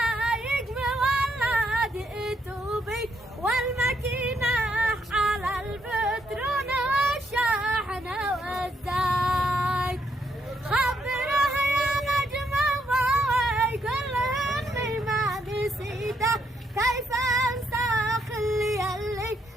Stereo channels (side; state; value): both; normal; correlation 0.76